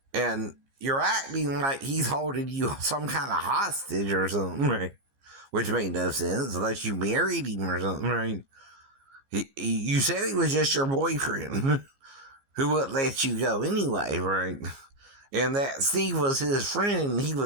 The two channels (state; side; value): late; left; 15 ms